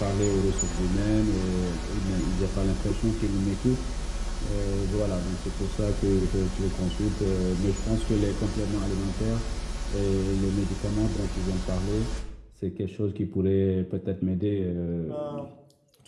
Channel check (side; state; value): both; identical; correlation 1.00